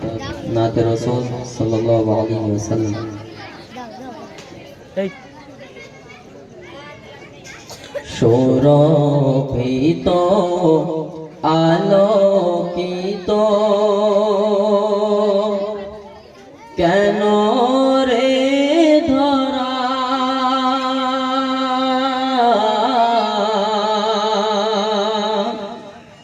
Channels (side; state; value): both; identical; correlation 1.00